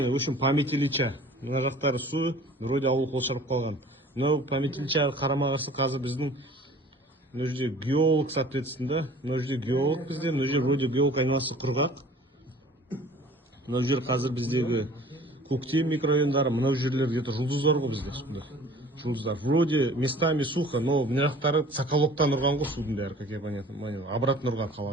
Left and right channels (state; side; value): normal; both; correlation 0.47